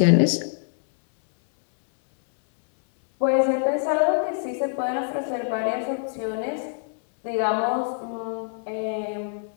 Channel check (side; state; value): right; silent; 60 dB below the other